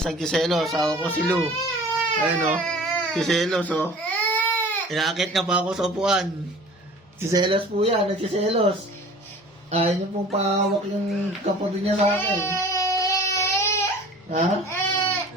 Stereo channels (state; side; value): normal; both; correlation 0.45